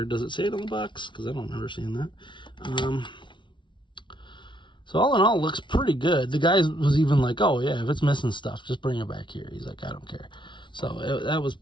Does it say it on the box? Because I don't remember seeing that. So all in all, it looks pretty good. The guy was even like, oh yeah, if it's missing stuff, just bring it back here. He's like, I don't care. So that was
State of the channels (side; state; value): right; late; 0.24 ms